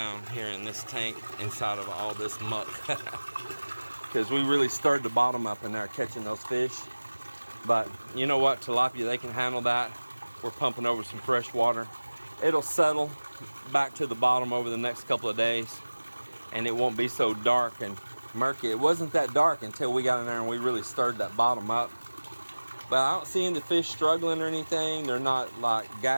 here in this tank inside of all this muck. Because we really stirred the bottom up in there catching those fish. But you know what, tilapia, they can handle that. We're pumping over some fresh water. It'll settle back to the bottom over the next couple of days, and it won't be so dark and murky. It wasn't that dark until we got in there and we really stirred that bottom up. But I don't see any fish struggling or anything. They're not like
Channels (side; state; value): both; inverted; correlation -1.00